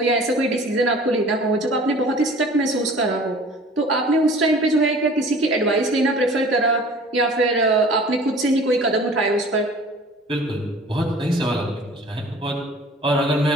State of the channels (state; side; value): normal; both; correlation 0.46